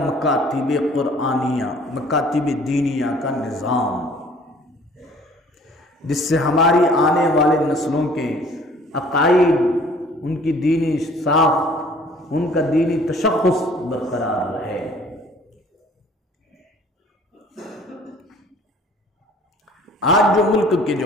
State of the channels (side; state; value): both; normal; correlation 0.53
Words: قرآنیہ، مکاتب دینیہ کا نظام، جس سے ہماری آنے والے نسلوں کے عقائد، ان کی دینی ساخت، ان کا دینی تشخص برقرار رہے۔ آج جو ملک کے